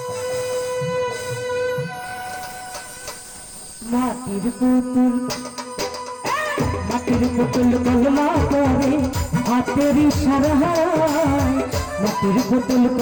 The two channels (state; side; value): identical; both; correlation 1.00